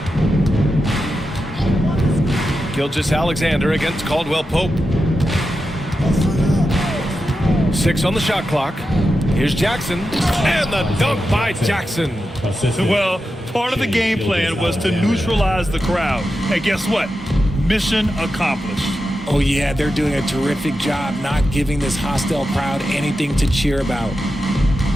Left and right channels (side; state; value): both; normal; correlation 0.90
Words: Gilgeous-Alexander against Caldwell Pope. 6 on the shot clock. Here's Jackson, and the dunk by Jackson. Well, part of the game plan was to neutralize the crowd. And guess what? Mission accomplished. Oh, yeah, they're doing a terrific job not giving this hostile crowd anything to cheer about.